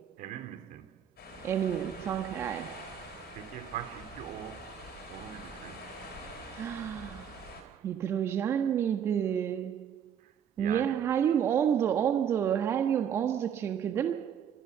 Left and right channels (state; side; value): quieter; left; 8.5 dB